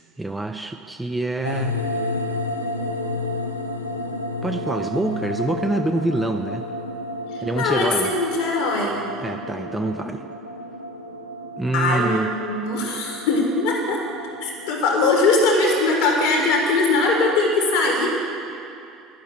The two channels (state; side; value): normal; both; correlation 0.34